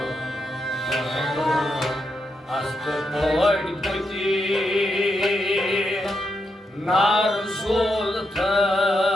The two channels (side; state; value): both; normal; correlation 0.83